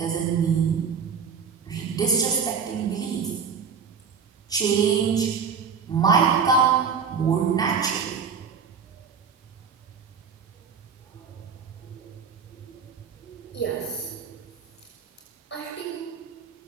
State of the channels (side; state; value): left; quieter; 6.2 dB